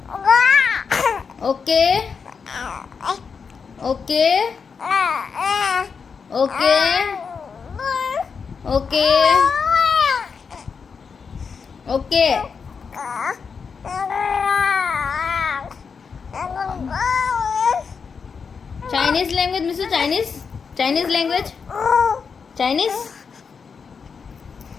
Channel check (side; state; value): right; quieter; 5.8 dB